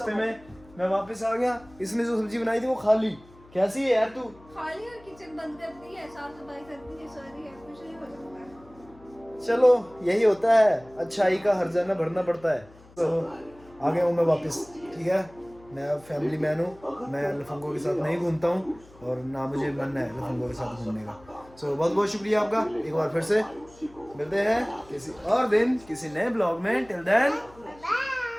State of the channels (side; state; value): left; noise; hum, 24 dB below the sound